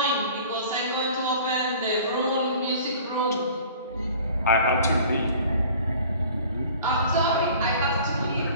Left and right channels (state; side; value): inverted; both; correlation -0.47